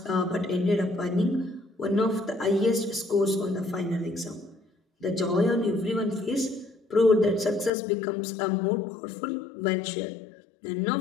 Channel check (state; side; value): drops out; right; at 7.7 s